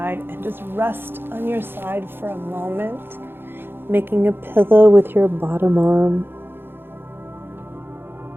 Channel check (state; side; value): late; left; 0.10 ms